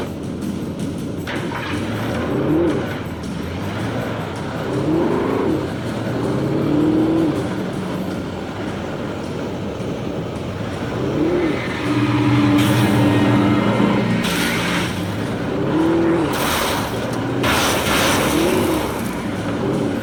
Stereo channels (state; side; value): identical; both; correlation 1.00